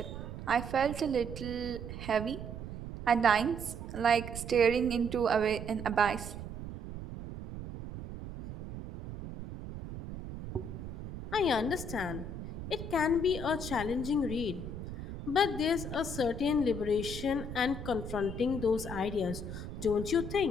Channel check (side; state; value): right; noise; rumble, 9 dB below the sound